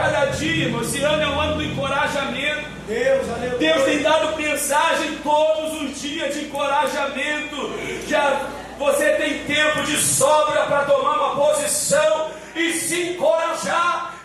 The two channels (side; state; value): both; identical; correlation 1.00